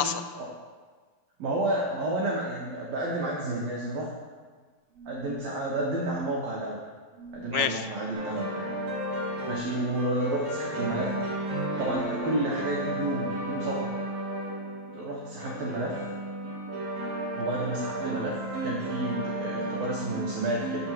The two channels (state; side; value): late; left; 11 ms